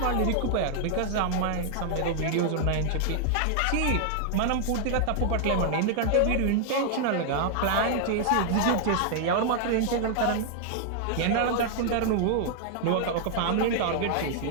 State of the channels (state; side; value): different; both; correlation 0.00